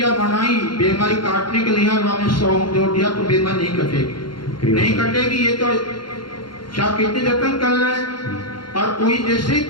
बनाई बीमारी काटने के लिए, हमने सोहम जोड़ दिया तो बीमारी नहीं कटेगी, नहीं कटेगी। ये तो क्या कितने जतन कर रहे हैं। और कोई जैसे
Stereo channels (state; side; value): late; right; 0.72 ms